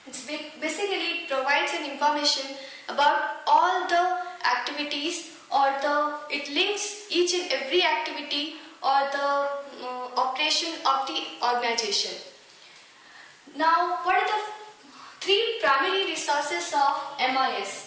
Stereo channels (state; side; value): identical; both; correlation 1.00